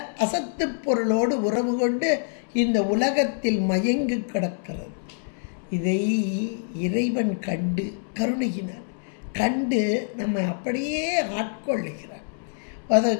அசத்து பொருளோடு உறவு கொண்டு இந்த உலகத்தில் மயங்கி கிடக்கிறது. இதை இறைவன் கண்டு கருணையினார் கண்டு நம்ம அப்படியே ஆட்கொள்ளுகிறார்.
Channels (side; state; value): right; silent; 61 dB below the other